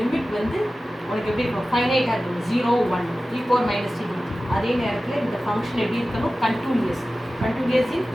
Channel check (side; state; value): both; normal; correlation 0.95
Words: limit வந்து உனக்கு எப்படி இருக்கும், ஃபைனைட்டாக இருக்கும், 0 1 e power minus t dt. அதே நேரத்தில் இந்த ஃபங்க்ஷன் எப்படி இருக்கணும், continuous in